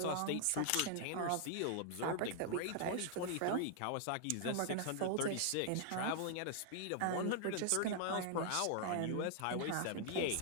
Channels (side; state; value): both; different; correlation 0.00